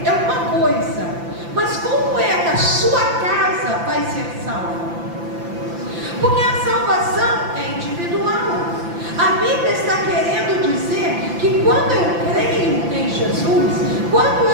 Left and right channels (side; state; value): left; late; 5.9 ms